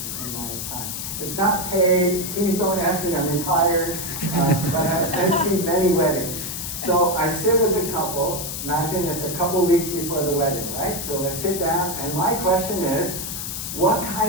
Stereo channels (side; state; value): left; noise; hiss, 5 dB below the sound